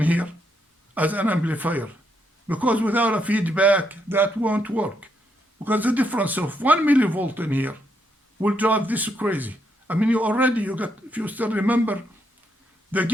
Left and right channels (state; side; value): normal; both; correlation 0.77